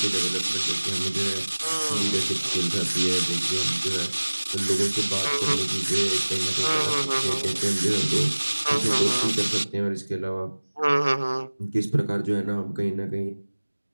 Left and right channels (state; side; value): inverted; both; correlation -1.00